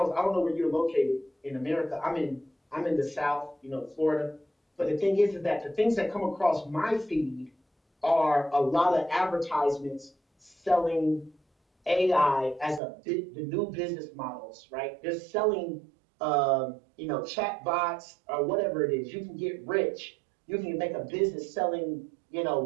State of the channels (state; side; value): drops out; left; at 12.8 s